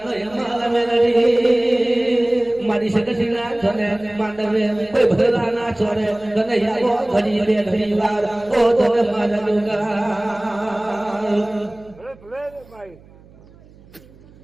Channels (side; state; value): right; noise; hum, 25 dB below the sound